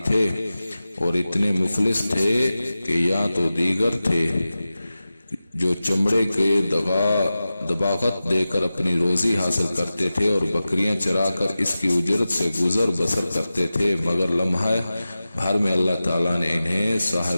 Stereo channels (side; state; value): both; inverted; correlation -0.95